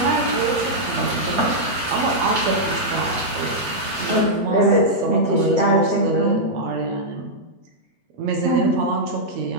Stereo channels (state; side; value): late; left; 8.2 ms